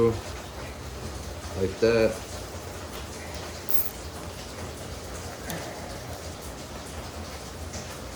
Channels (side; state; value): both; identical; correlation 1.00